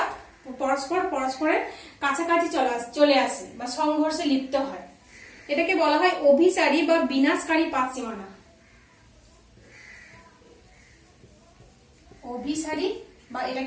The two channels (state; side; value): identical; both; correlation 1.00